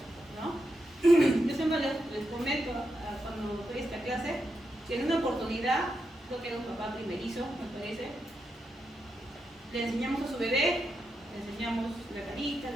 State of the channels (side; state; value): both; normal; correlation 0.85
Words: ¿no? Yo siempre les comento cuando doy esta clase que en una oportunidad, creo que era un papá primerizo, me parece, le enseñamos a su bebé, le enseñamos la carita,